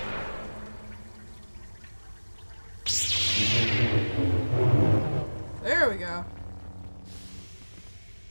There we go.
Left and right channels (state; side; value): inverted; both; correlation -1.00